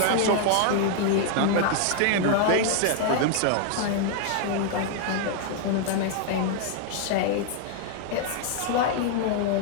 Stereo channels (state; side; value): different; both; correlation 0.00